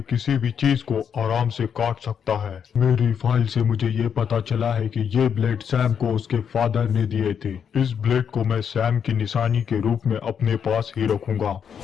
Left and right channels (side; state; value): right; quieter; 7.5 dB